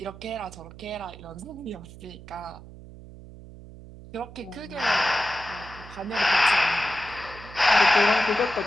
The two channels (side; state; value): right; noise; hum, 17 dB below the sound